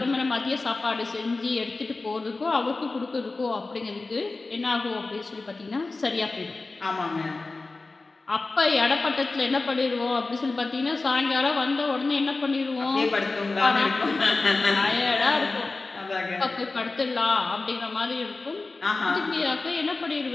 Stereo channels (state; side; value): quieter; right; 3.5 dB